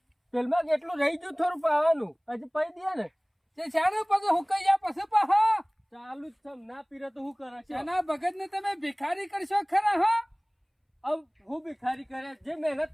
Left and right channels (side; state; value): both; identical; correlation 1.00